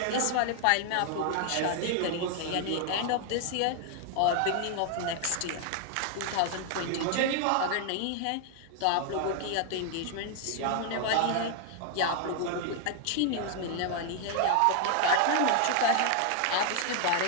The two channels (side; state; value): both; different; correlation 0.00